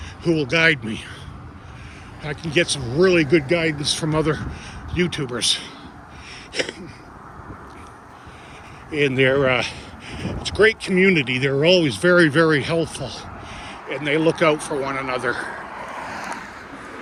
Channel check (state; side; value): identical; both; correlation 1.00